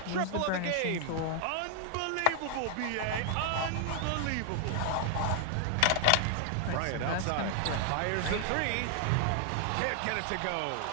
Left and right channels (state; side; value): different; both; correlation 0.00